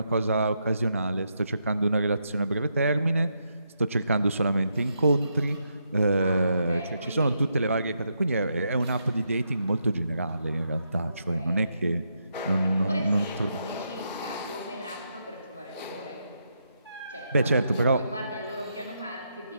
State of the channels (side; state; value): both; inverted; correlation -0.80